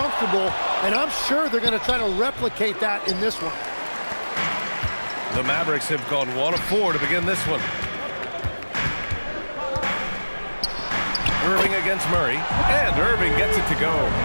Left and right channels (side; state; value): both; inverted; correlation -1.00